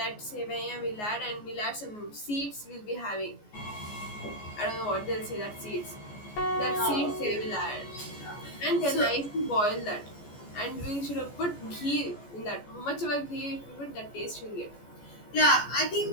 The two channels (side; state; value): right; late; 14 ms